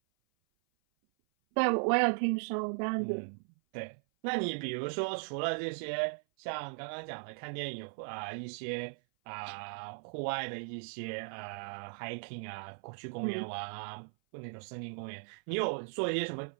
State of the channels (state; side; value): silent; left; 53 dB below the other